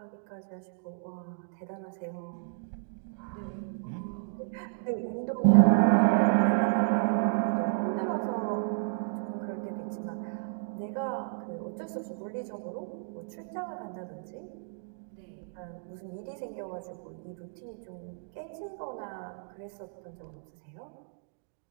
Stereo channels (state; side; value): silent; left; digital silence